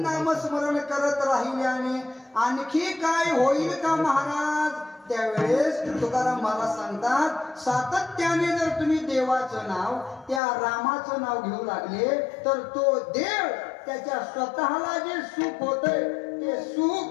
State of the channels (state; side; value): drops out; right; at 10.4 s